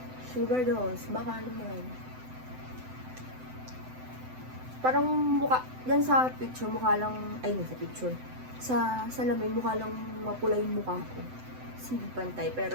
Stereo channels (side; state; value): left; late; 7.9 ms